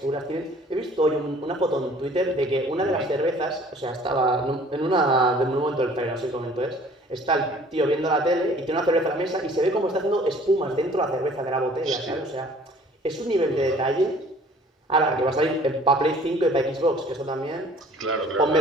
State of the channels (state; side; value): normal; both; correlation 0.53